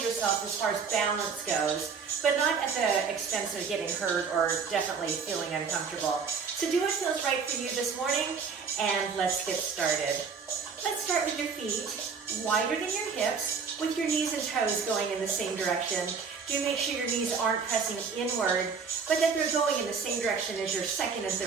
yourself as far as balance goes, but not at the expense of getting hurt or definitely feeling uncomfortable. So do what feels right for you this morning, and let's get started. Let's start with your feet, wider than your hips, with your knees and toes going in the same direction. Do make sure your knees aren't pressing inward, but that they're going in the same direction as your second and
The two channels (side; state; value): left; quieter; 5.6 dB